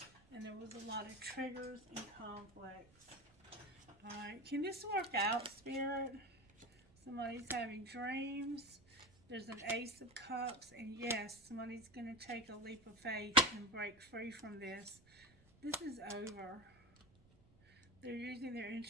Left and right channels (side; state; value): right; noise; rumble, 27 dB below the sound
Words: And there was a lot of triggers and conflicts. Alright, can this work out, Spirit? Somebody's having dreams. There's an Ace of Cups. And yes, somebody's going to take a leap of faith and break free from this. This is over. They're using their